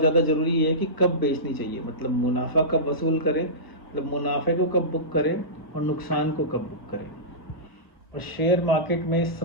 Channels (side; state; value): right; late; 1.0 ms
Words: ज़रूरी है कि कब बेचनी चाहिए, मतलब मुनाफा कब वसूल करें, मतलब मुनाफे को कब बुक करें और नुकसान को कब बुक करें। और शेयर मार्केट में